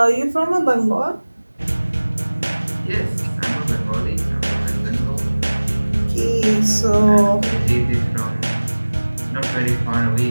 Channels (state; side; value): inverted; both; correlation -1.00